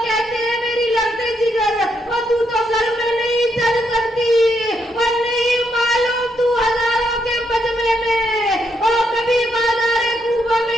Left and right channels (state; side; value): normal; both; correlation 0.77